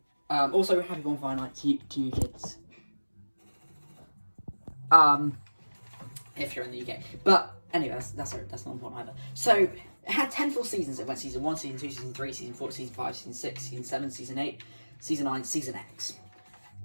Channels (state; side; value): inverted; both; correlation -1.00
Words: Also, happy bonfire night to you kids. If you're in the UK. But anyway, that's not important either. So it had 10 full seasons. It went season 1, season 2, season 3, season 4, season 5, season 6, season 7, season 8, season 9, season X.